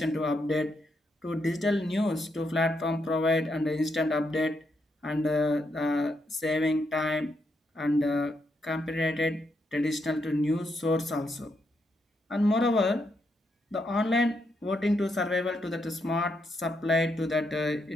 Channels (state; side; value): normal; both; correlation 0.80